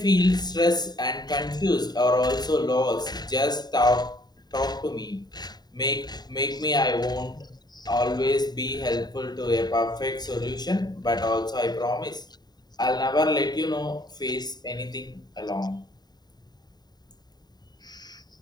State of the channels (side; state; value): right; late; 0.20 ms